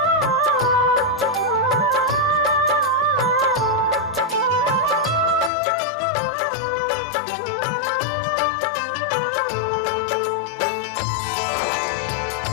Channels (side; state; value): right; drops out; at 5.5 s